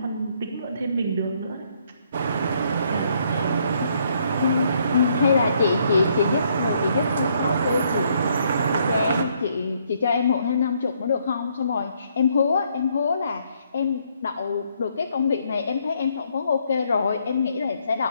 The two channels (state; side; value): inverted; both; correlation -0.70